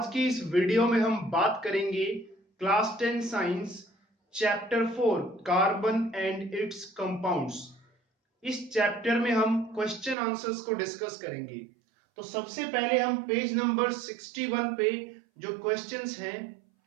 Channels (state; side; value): drops out; left; at 10.2 s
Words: की इस वीडियो में हम बात करेंगे class 10 science chapter 4 carbon and it's compounds. इस चैप्टर में हम क्वेश्चन आंसर्स को डिस्कस करेंगे। तो सबसे पहले हम पेज नंबर 61 पे जो क्वेश्चंस हैं,